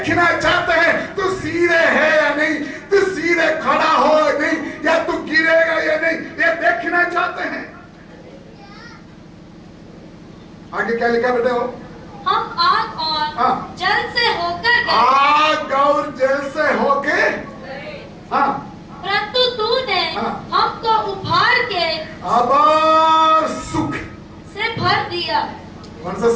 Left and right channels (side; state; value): both; identical; correlation 1.00